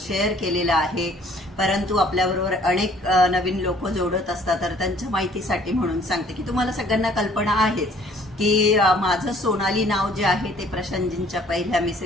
केलेला आहे। परंतु आपल्याबरोबर अनेक नवीन लोक जोडत असतात, तर त्यांच्या माहितीसाठी म्हणून सांगते की तुम्हाला सगळ्यांना कल्पना आहेच की माझं सोनाली नाव जे आहे ते प्रशांतजींच्या पहिल्या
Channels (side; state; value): both; normal; correlation 0.58